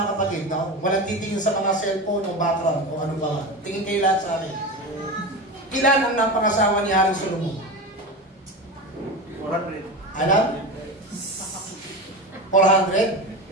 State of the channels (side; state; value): both; normal; correlation 0.25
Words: kapatid, no? Walang titingin sa mga cellphone o background o ano ba. Tingin kayo lahat sa akin. Ilan ang napangasawa ni Haring Solomon? 400. Alam? 400?